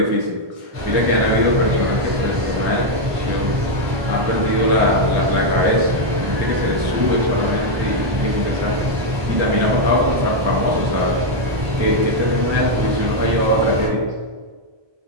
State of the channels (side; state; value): left; late; 1.2 ms